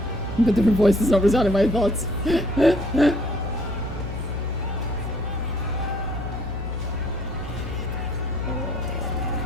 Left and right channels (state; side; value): normal; both; correlation 0.61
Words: But her voice is not resounding my thoughts.